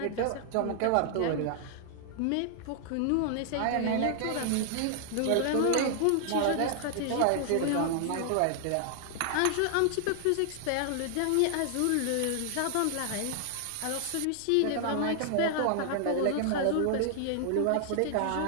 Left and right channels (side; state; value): both; different; correlation 0.00